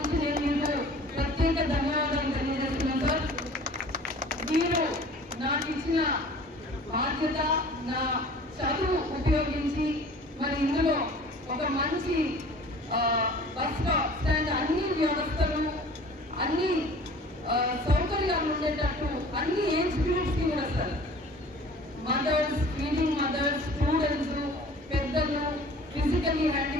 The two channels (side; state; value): both; normal; correlation 0.46